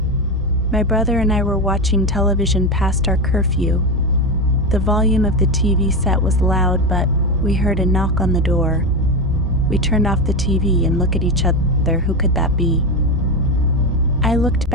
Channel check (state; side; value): normal; both; correlation 0.16